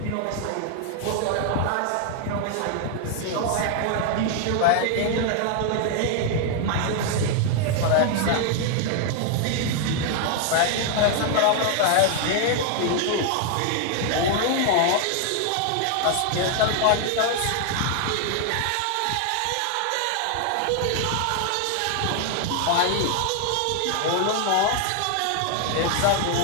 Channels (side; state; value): both; different; correlation 0.00